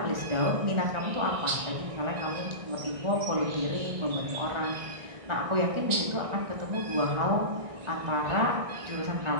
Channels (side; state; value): left; late; 1.6 ms